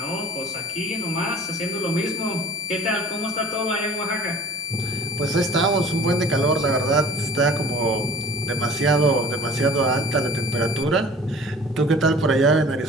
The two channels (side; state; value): both; normal; correlation 0.46